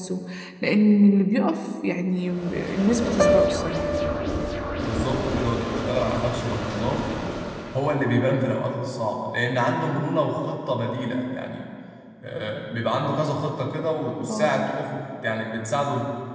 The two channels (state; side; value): identical; both; correlation 1.00